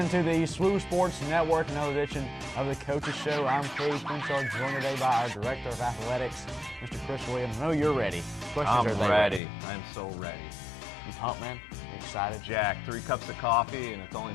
to the SWU Sports Network, another edition of the Coaches Show. I'm Cade Crenshaw, joined today by our Director of Athletics, Mr. Chris Williams. I know you're ready. I'm ready. I'm so ready. You pumped, man? You excited? Jack, 3 cups of coffee, and it's only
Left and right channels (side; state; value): right; drops out; at 9.4 s